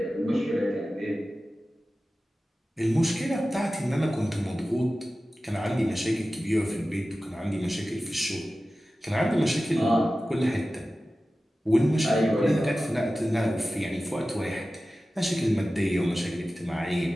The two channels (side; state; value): both; normal; correlation 0.95